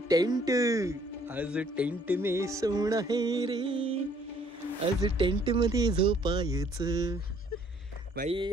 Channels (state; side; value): normal; both; correlation 0.62